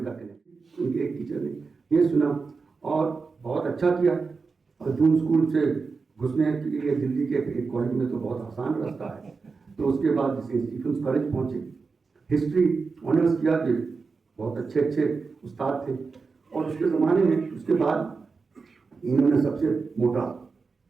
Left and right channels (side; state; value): left; quieter; 4.6 dB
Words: कनेक्शन। उनके एक टीचर ने ये सुना और बहुत अच्छा किया, और जून स्कूल से घुसने के लिए दिल्ली के एक कॉलेज में तो बहुत आसान रास्ता है। तो उसके बाद जैसे स्टीफेंस कॉलेज पहुँचे, हिस्ट्री ऑनर्स किया, कि बहुत अच्छे उस्ताद थे। और उसके ज़माने में उसके बाद इन्होंने सबसे मोटा